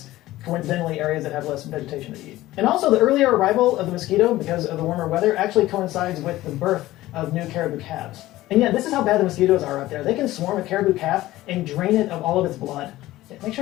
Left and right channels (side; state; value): right; quieter; 16.4 dB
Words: coincidentally areas that have less vegetation to eat. And also, the earlier arrival of the mosquito, because of the warmer weather, actually coincides with the birth of new caribou calves. And yeah, this is how bad the mosquitoes are out there. They can swarm a caribou calf and drain it of all of its blood. Make